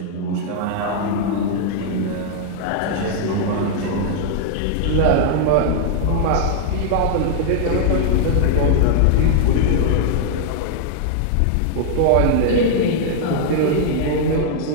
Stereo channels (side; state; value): both; different; correlation -0.01